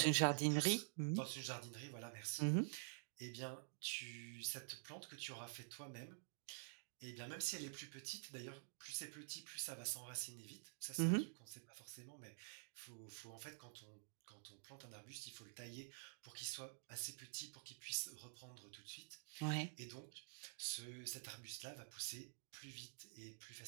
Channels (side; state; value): left; silent; digital silence